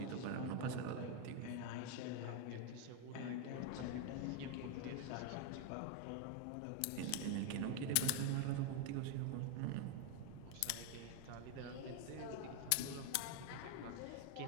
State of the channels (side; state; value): both; different; correlation 0.01